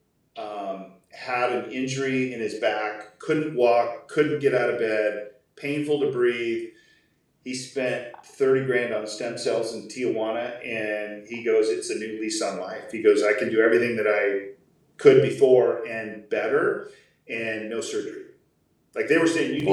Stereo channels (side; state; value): both; identical; correlation 1.00